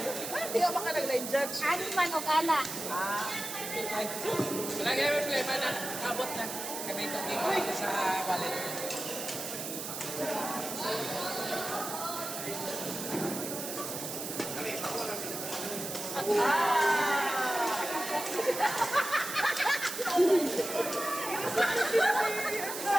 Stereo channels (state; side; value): noise; right; hiss, 6 dB below the sound